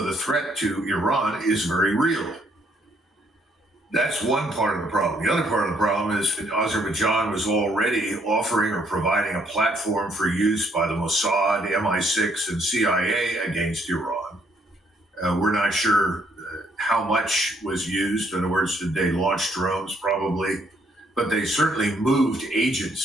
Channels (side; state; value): both; normal; correlation 0.69